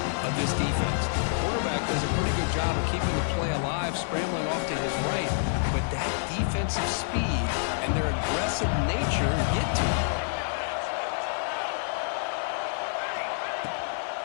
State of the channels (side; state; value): right; silent; digital silence